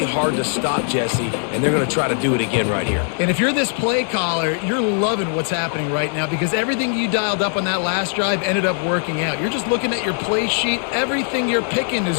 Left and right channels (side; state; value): right; silent; 56 dB below the other